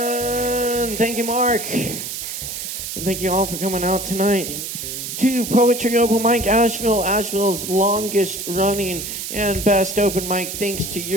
Thank you, Mark. And thank you all for coming out tonight to Poetry Open Mic Asheville, Asheville's longest running and best open mic. Thanks to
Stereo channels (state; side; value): noise; right; hiss, 6 dB below the sound